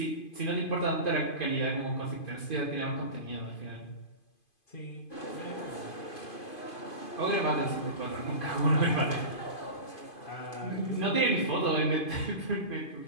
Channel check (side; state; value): right; late; 2.5 ms